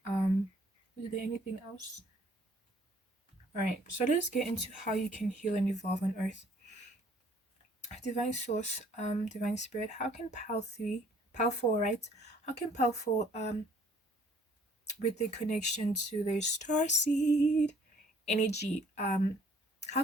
um is there anything else? All right, so let's get into how you can heal and evolve on earth. Divine source, divine spirit, how can pal 4, right? How can pal 4, with the connection to their star seed energy, how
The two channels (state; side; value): normal; both; correlation 0.59